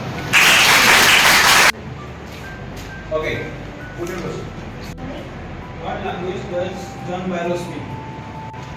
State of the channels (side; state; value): both; identical; correlation 1.00